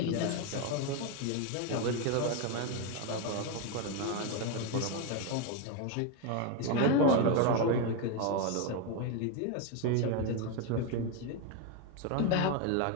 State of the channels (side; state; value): both; different; correlation 0.02